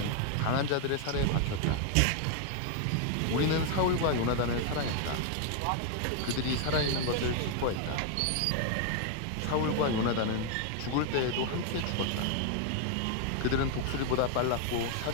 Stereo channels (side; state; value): both; different; correlation 0.00